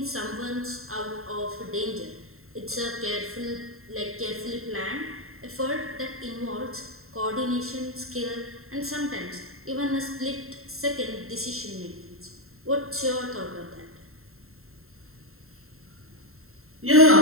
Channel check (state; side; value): late; left; 0.62 ms